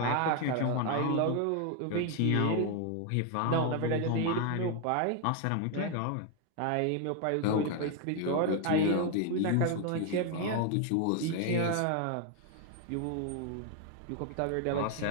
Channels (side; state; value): both; different; correlation 0.01